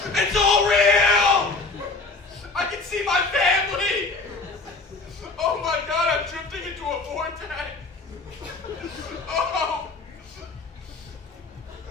It's all real! I can see my family! Oh my God, I'm drifting into a vortex! Oh!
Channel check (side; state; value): right; quieter; 3.6 dB